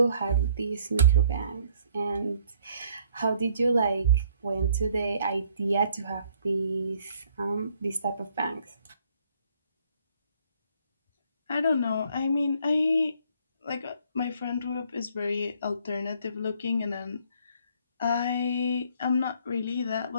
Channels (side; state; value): both; inverted; correlation -0.63